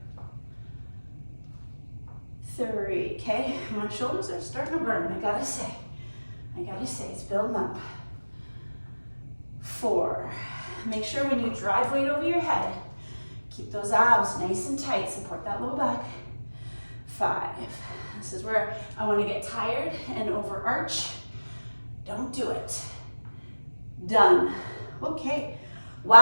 3. Okay, my shoulders are starting to burn, I gotta say, it's building up. 4. Make sure when you drive weight over your head, keep those abs nice and tight, support that low back. 5. This is where I want to get tired and overarch. Don't do it. Done. Okay.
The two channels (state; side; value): inverted; both; correlation -1.00